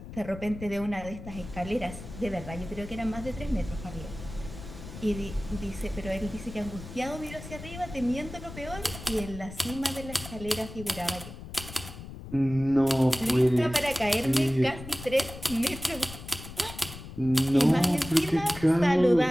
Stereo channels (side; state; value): left; noise; rumble, 13 dB below the sound